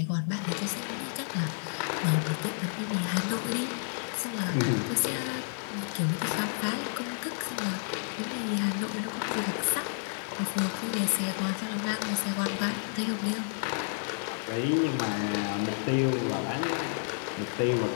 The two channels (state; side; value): silent; right; digital silence